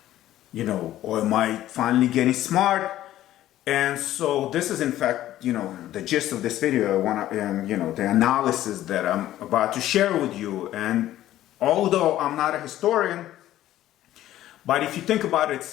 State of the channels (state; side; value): quieter; right; 13.6 dB